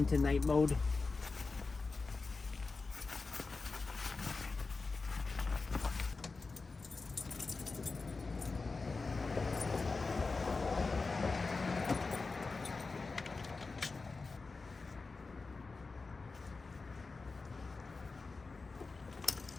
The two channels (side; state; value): right; quieter; 4.0 dB